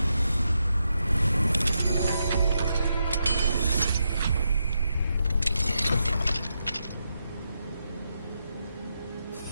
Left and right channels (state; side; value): inverted; both; correlation -0.84